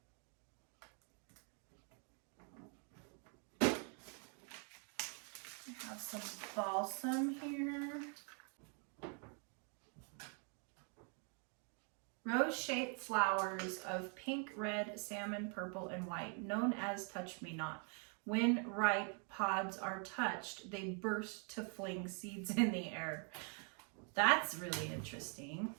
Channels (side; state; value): left; quieter; 39.8 dB